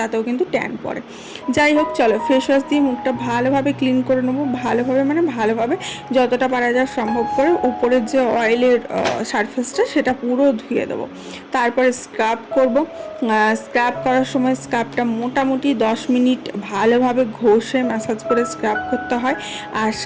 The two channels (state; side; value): identical; both; correlation 1.00